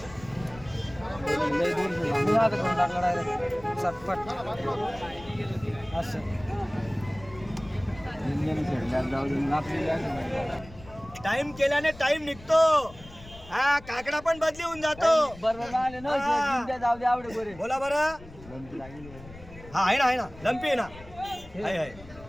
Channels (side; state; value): left; noise; rumble, 18 dB below the sound